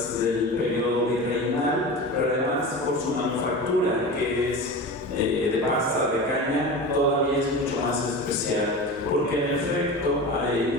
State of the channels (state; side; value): normal; both; correlation 0.30